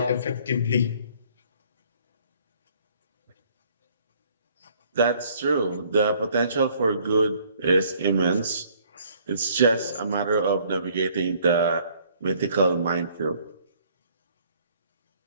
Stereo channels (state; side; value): inverted; both; correlation -0.61